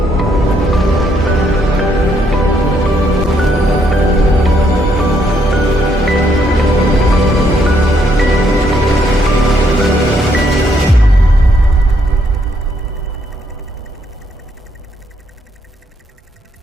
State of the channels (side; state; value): both; normal; correlation 0.72